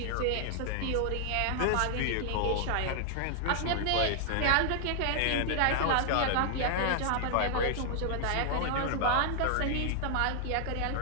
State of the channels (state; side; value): different; both; correlation 0.00